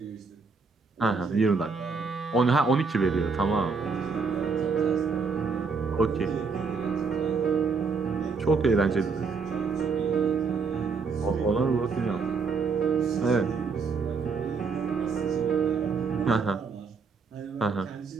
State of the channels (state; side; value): quieter; left; 4.9 dB